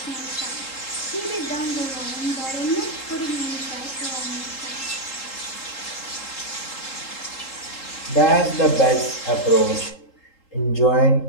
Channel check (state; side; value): late; right; 3.8 ms